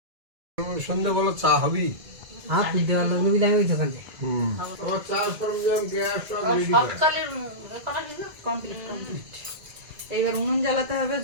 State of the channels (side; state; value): left; late; 2.0 ms